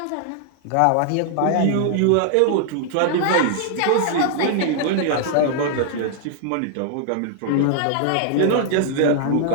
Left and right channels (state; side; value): different; both; correlation 0.00